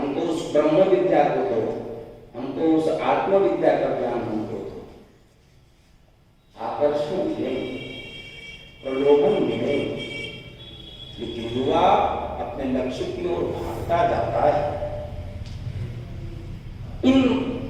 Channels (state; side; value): identical; both; correlation 1.00